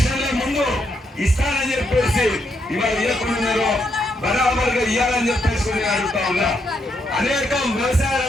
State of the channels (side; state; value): both; normal; correlation 0.78